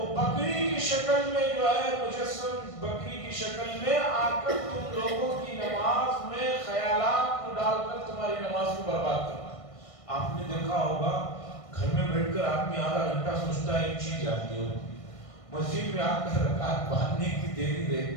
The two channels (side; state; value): right; late; 1.5 ms